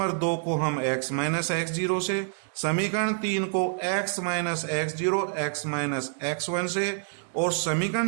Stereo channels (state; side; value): silent; left; digital silence